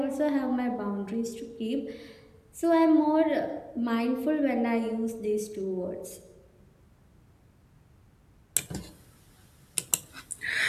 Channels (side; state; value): both; identical; correlation 1.00